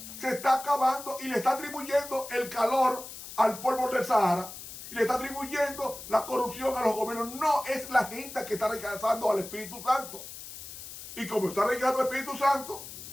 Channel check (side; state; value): left; noise; hiss, 12 dB below the sound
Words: se está acabando y le está atribuyendo el calor al polvo del Sahara, y le está atribuyendo la corrupción a los gobiernos. No es la gente que está rechazando al Espíritu Santo. Y como está rechazando al Espíritu Santo,